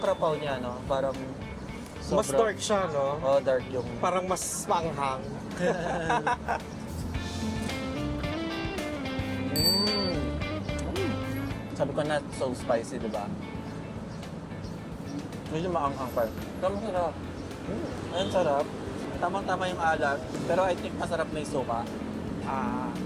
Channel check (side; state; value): both; identical; correlation 1.00